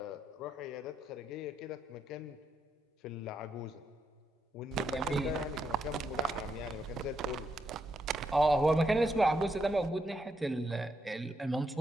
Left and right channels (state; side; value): normal; both; correlation 0.80